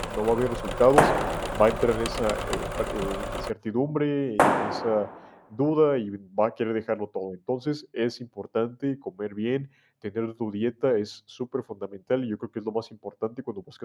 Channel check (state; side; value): identical; both; correlation 1.00